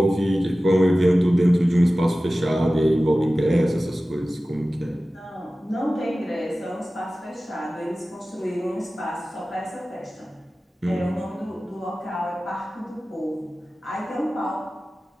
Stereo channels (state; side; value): normal; both; correlation 0.96